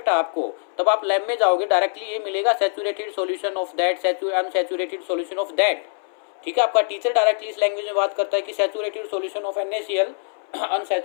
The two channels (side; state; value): right; silent; 62 dB below the other